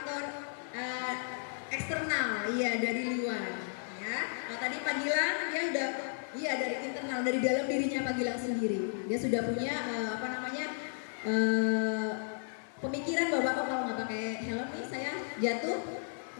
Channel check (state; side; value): silent; right; 55 dB below the other